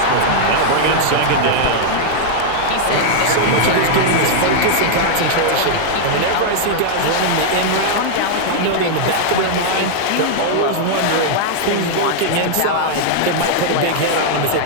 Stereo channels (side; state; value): both; different; correlation -0.01